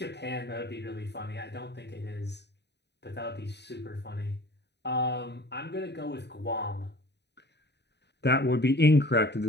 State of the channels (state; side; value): late; right; 0.50 ms